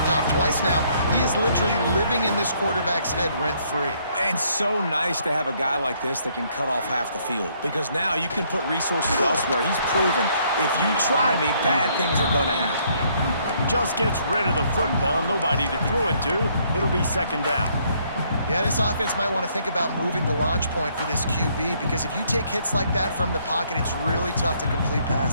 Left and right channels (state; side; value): inverted; both; correlation -0.68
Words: off twice now. He is literally living in this quarterback's head rent-free. And so nice to have a guy like this that can cut off half the field, because now you can put resources elsewhere. He's proven if you try me, bad things are going to happen. Just gets rid of the football, nobody to throw it to. It'll be 2nd down. Yeah, this offense might want to think about moving the launch point for this QB because if you take hits like that from the pocket, it's really tough to complete